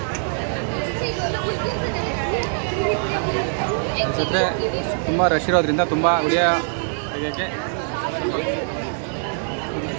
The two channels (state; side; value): silent; left; 64 dB below the other